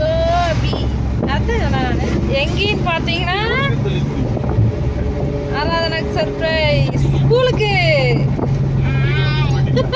அதுதான் நான் எங்கேன்னு பார்த்தீங்கன்னா ஆராதனாக்கு சர்ப்ரைஸ். ஸ்கூலுக்கு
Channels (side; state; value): both; identical; correlation 1.00